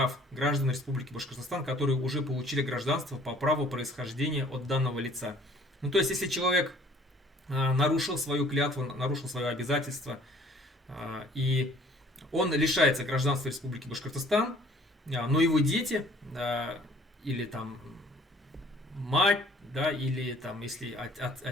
граждан Республики Башкортостан, которые уже получили гражданство по праву происхождения от данного лица. Ну, то есть, если человек нарушил свою клятву, нарушил свое обязательство, и он лишается гражданства Республики Башкортостан, но его дети, или там мать, да, или там, если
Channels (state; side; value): normal; both; correlation 0.55